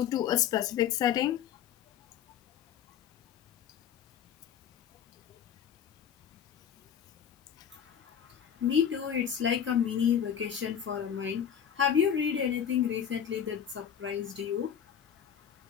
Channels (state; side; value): quieter; right; 8.7 dB